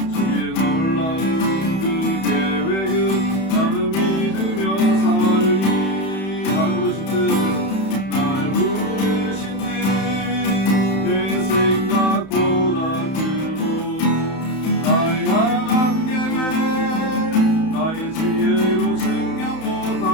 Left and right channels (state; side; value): late; right; 31 ms